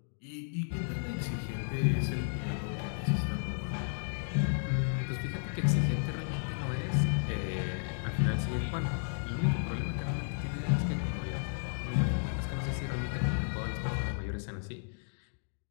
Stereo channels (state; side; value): silent; right; digital silence